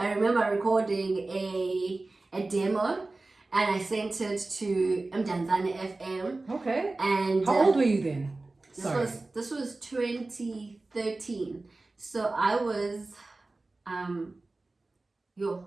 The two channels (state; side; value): quieter; left; 3.2 dB